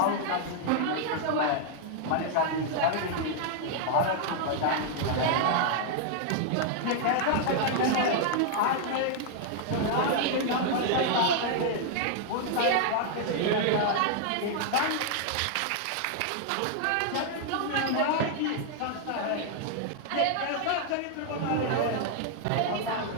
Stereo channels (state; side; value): different; both; correlation 0.00